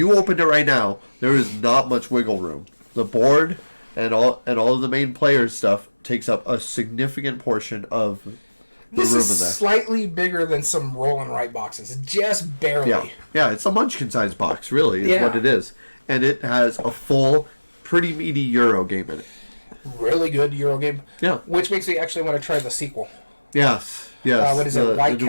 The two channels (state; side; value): inverted; both; correlation -1.00